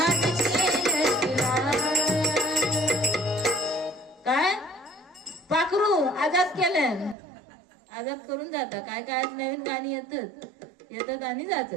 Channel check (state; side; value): drops out; left; at 7.2 s